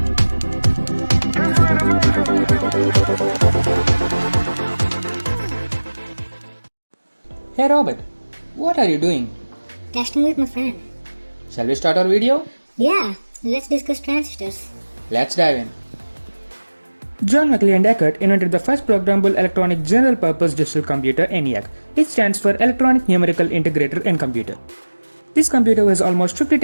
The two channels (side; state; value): both; inverted; correlation -1.00